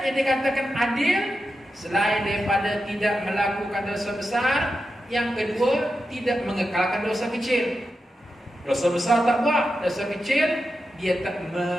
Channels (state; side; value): normal; both; correlation 0.89